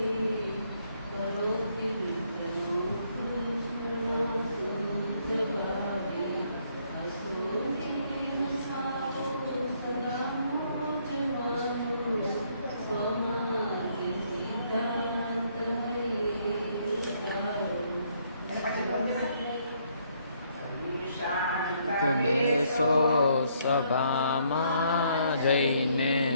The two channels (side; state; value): both; inverted; correlation -0.70